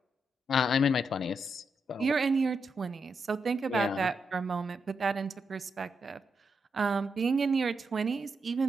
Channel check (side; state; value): both; normal; correlation 0.83